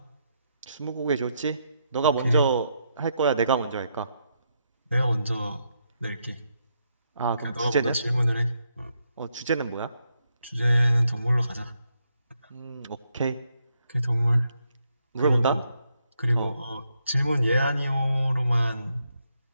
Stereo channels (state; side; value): inverted; both; correlation -0.79